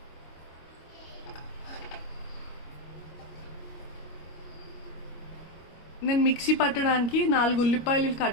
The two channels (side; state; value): right; late; 26 ms